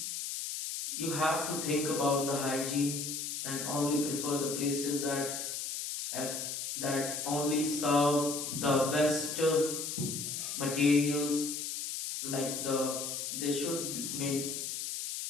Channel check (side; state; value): left; noise; hiss, 4 dB below the sound